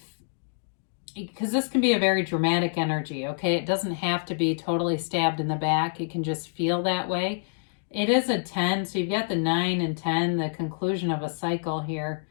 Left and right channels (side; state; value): right; silent; digital silence